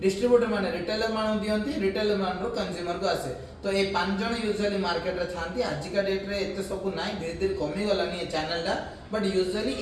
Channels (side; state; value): both; identical; correlation 1.00